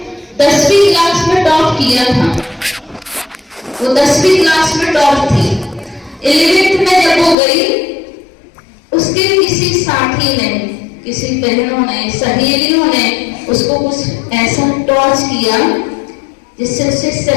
10वीं क्लास में टॉप किया था। वो 10वीं क्लास में टॉप थी। 11th में जब वो गई, उसके किसी साथी ने, किसी बहनों ने, सहेलियों ने उसको कुछ ऐसा टॉर्च किया जिससे उसे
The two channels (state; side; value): drops out; right; at 7.4 s